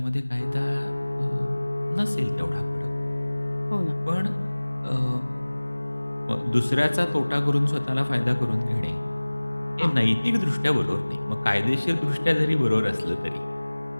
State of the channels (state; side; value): inverted; both; correlation -1.00